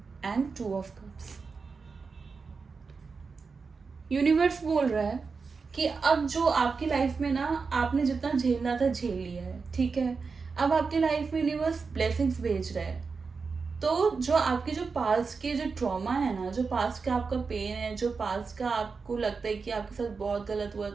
and two of cups. Universe बोल रहा है कि अब जो आपकी लाइफ में आपने जितना झेलना था झेल लिया है। ठीक है, अब आपकी लाइफ में यूनिवर्स ब्लेसिंग्स भेज रहा है। तो जो आपके जो पास्ट के जो ट्रॉमा है ना, जो पास्ट का आपका पेन है, जो पास्ट का आपको लगता है कि आपके साथ बहुत गलत हुआ,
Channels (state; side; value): quieter; left; 4.9 dB